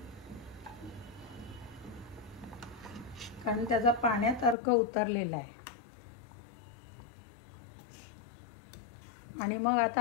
कारण त्याचा पाण्यात अर्क उतरलेला आहे. आणि मग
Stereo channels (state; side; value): drops out; right; at 4.5 s